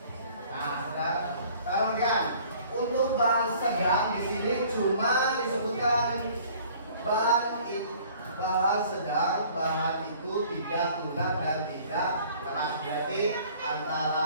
Nah, sekarang lihat. Untuk bahan sedang di sini cuma disebutkan bahan sedang, bahan itu tidak lunak dan tidak keras. Berarti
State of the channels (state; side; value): inverted; both; correlation -0.53